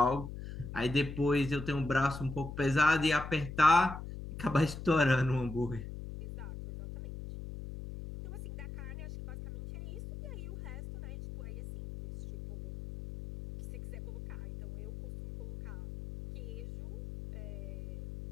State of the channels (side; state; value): left; noise; hum, 10 dB below the sound